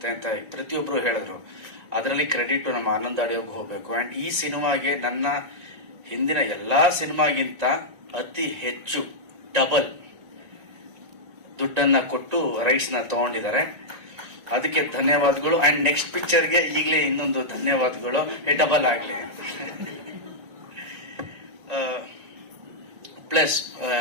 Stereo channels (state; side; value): late; left; 1.9 ms